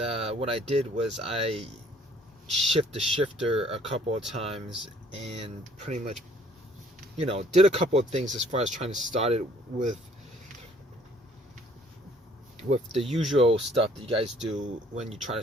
what I did was I shifted the shifter a couple of times, and pretty much, did a couple of things as far as trying to start it with the usual stuff that you guys do when you try to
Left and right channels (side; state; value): both; normal; correlation 0.60